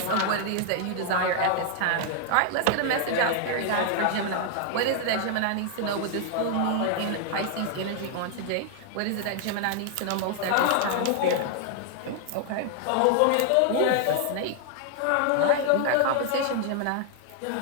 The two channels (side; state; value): both; different; correlation 0.00